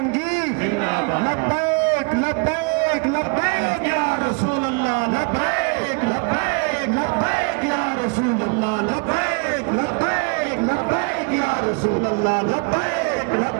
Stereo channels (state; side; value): quieter; left; 33.8 dB